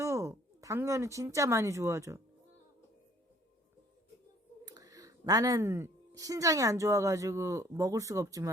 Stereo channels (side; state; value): both; normal; correlation 0.58